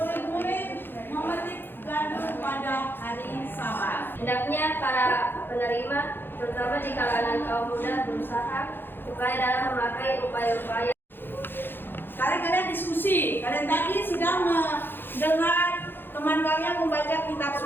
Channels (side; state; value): right; late; 0.10 ms